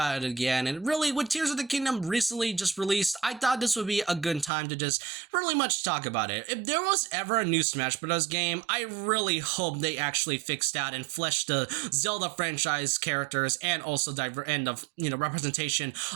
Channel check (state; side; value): drops out; left; at 4.5 s